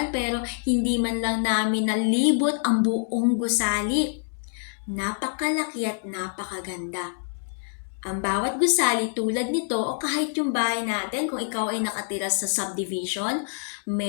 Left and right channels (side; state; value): right; silent; digital silence